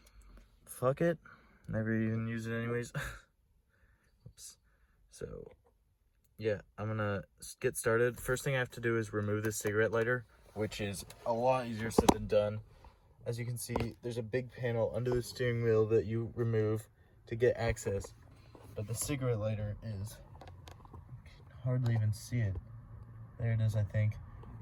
Fuck it, never even use it anyways. Oops. So yeah, I'm gonna get started. First thing I have to do is remove this cigarette lighter, which is a lot easier said than done. As you can see, there's a big panel under the steering wheel that you remove to get access, but the cigarette lighter is, you can hardly even see it. There it is, I think.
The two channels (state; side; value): identical; both; correlation 1.00